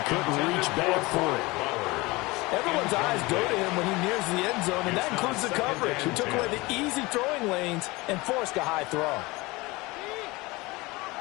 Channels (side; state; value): right; quieter; 22.7 dB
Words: couldn't reach back for it. Everyone's eyes go to him when he nears the end zone, and that includes the coverage, who took away the easy throwing lanes and forced a high throw.